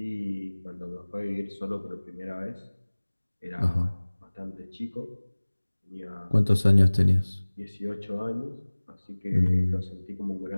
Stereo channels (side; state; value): both; inverted; correlation -1.00